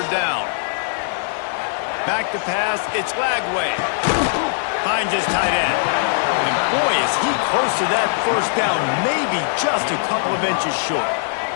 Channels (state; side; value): silent; right; digital silence